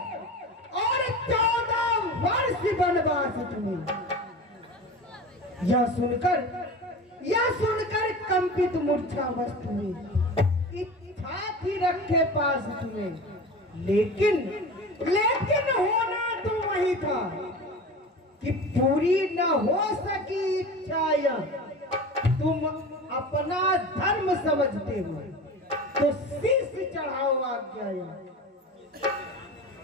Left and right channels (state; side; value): normal; both; correlation 0.33